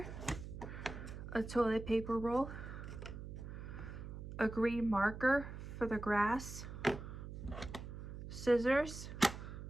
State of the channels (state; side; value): noise; right; hum, 9 dB below the sound